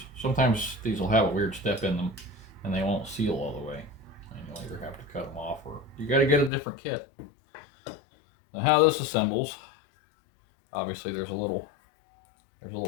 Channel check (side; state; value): right; drops out; at 6.5 s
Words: these will have a weird step in them and they won't seal all the way. And you'll either have to cut them off or you got to get a different kit. Now how this assembles, obviously there's a little